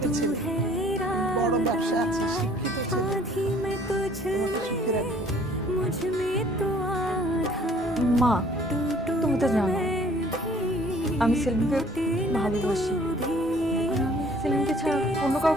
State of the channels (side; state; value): both; normal; correlation 0.57